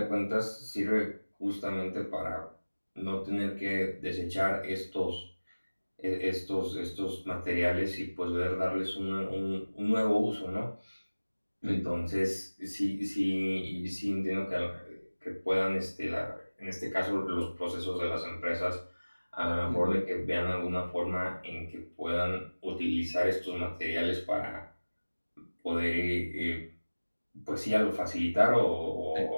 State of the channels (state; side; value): inverted; both; correlation -1.00